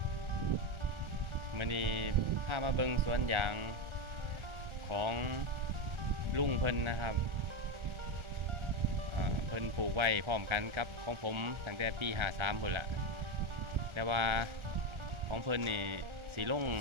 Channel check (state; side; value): late; left; 1.4 ms